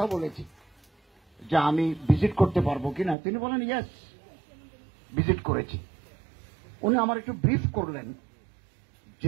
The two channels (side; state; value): left; drops out; at 3.2 s